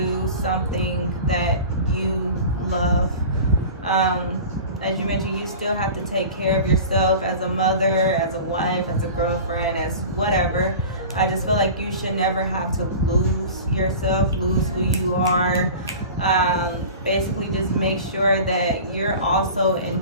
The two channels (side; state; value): both; inverted; correlation -0.36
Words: something that you love. As you mentioned, you still have to take care of yourself as a mother, as a wife, as a girlfriend, as whatever. I just feel like you should never have to lose yourself, lose who you are. Basically, just make sure that you're also